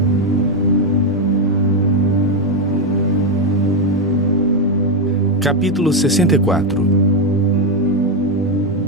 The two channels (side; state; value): both; normal; correlation 0.05